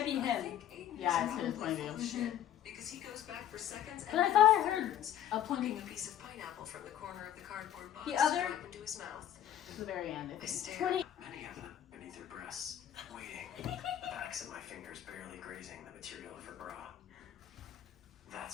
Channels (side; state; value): right; quieter; 10.8 dB